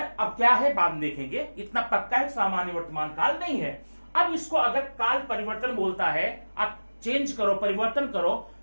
क्या है बाद में देखेंगे, इतना पक्का है सामान्य वर्तमान काल नहीं है। अब इसको अगर काल परिवर्तन बोलता है, आप चेंज करो, परिवर्तन करो,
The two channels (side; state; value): both; inverted; correlation -1.00